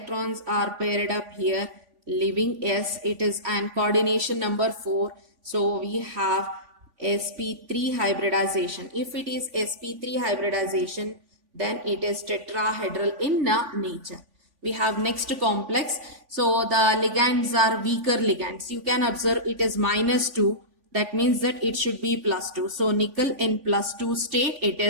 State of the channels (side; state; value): left; late; 3.5 ms